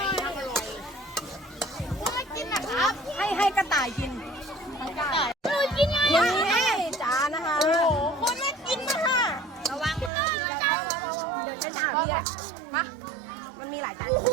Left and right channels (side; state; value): left; drops out; at 10.1 s